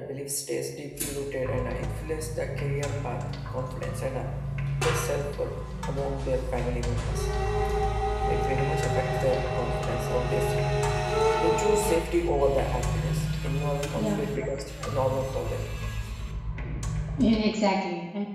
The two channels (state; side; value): identical; both; correlation 1.00